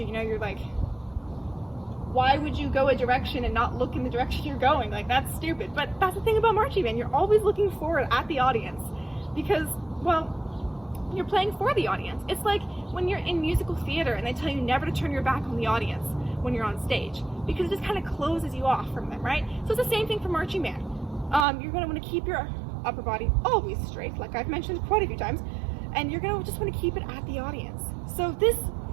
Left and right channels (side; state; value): left; drops out; at 21.5 s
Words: You know, you're like, why would you go a direction and not look in the direction you're going? Like, that's stupid. But that's the thing about marching band. You're always looking forward at the audience because, well, you're playing for the audience. It's like when you're in musical theater and they tell you never to turn your back on the audience when you're on stage, because it just kind of closes you off from them, right? So it's the same thing for marching band. You're going to want to keep your upper body always straight, like I've mentioned quite a few times, and you're going to just want to keep it at the audience. So this